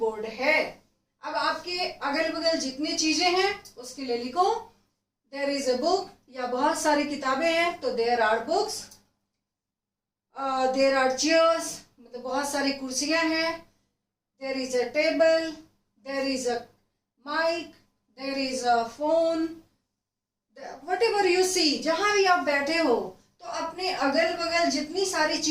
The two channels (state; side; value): identical; both; correlation 1.00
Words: है। अब आपके अगल बगल जितनी चीजें हैं उसके लिए लिखो, देयर इज अ बुक, या बहुत सारी किताबें हैं तो there are books, there are chairs, मतलब बहुत सारी कुर्सियां हैं, there is a table, there is a mic, there is a phone, whatever you see, जहां भी आप बैठे हो तो अपने अगल बगल जितनी सारी